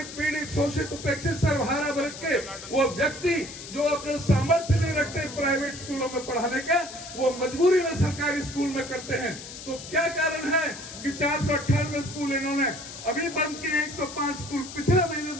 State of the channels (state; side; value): noise; left; hiss, 12 dB below the sound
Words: पीड़ित, शोषित, उपेक्षित, सर्वहारा वर्ग के वो व्यक्ति जो अपने सामर्थ्य नहीं रखते प्राइवेट स्कूलों में पढ़ाने का, वो मजबूरी में सरकारी स्कूल में करते हैं। तो क्या कारण है कि 498 स्कूल इन्होंने अभी बंद किए, 105 स्कूल पिछले महीने